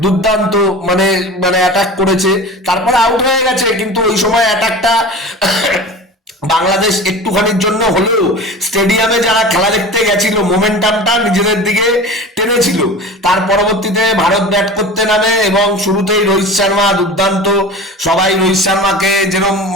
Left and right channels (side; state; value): both; normal; correlation 0.35